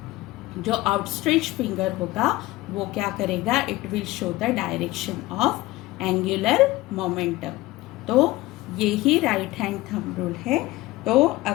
जो आउटस्ट्रेच फिंगर होगा वो क्या करेगा, it will show the direction of angular momentum. तो ये ही राइट हैंड थंब रूल है। तो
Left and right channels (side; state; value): right; quieter; 18.6 dB